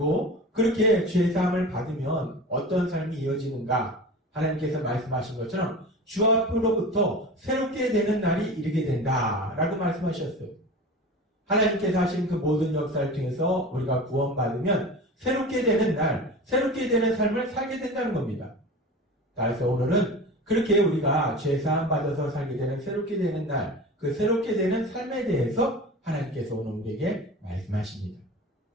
그렇게 죄사함을 받으면 어떤 삶이 이어지는가? 하나님께서 말씀하신 것처럼 주 앞으로부터 새롭게 되는 날이 이르게 된다라고 말씀하셨어요. 하나님께서 하신 그 모든 역사를 통해서 우리가 구원받으면 새롭게 되는 날, 새롭게 되는 삶을 살게 된다는 겁니다. 그래서 오늘은 그렇게 우리가 죄사함 받아서 살게 되는 새롭게 되는 날, 그 새롭게 되는 삶에 대해서 하나님께서 오늘 우리에게 말씀하십니다.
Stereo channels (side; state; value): both; normal; correlation 0.34